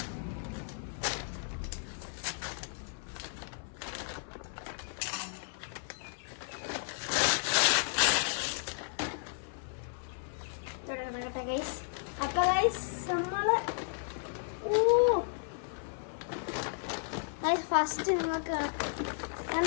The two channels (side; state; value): right; silent; 55 dB below the other